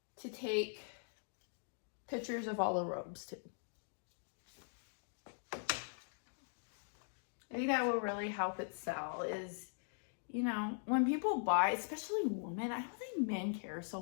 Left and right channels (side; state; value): right; silent; digital silence